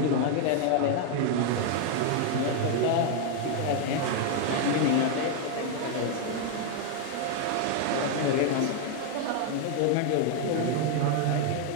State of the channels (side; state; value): both; different; correlation 0.00